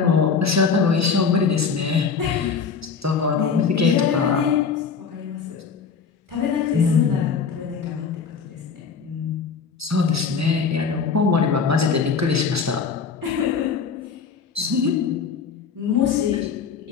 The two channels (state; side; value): quieter; right; 5.8 dB